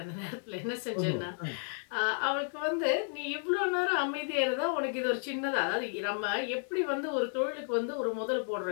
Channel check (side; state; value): right; silent; 56 dB below the other